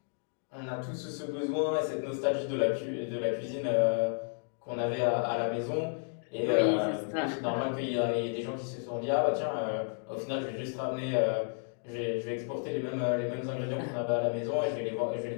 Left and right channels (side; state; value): right; silent; 56 dB below the other